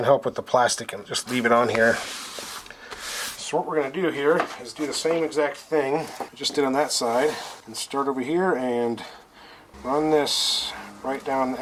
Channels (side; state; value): both; identical; correlation 1.00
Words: help with the plastic and just leave it on here. So what we're going to do here is do the same exact thing we just did on that side, and start over here and run this right down the